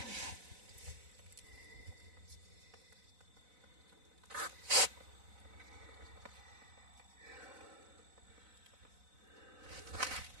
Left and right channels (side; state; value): left; late; 4.0 ms